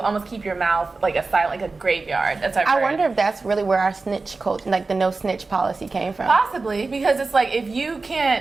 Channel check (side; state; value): left; quieter; 3.8 dB